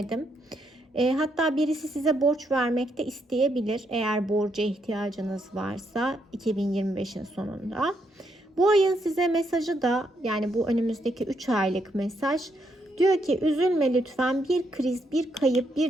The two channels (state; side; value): normal; both; correlation 0.77